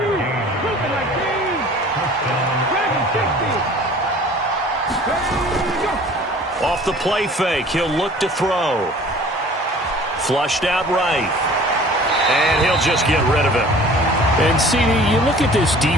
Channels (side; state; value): both; normal; correlation 0.48